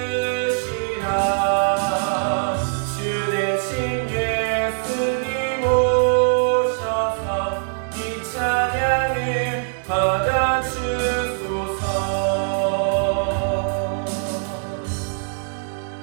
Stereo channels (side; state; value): left; silent; 64 dB below the other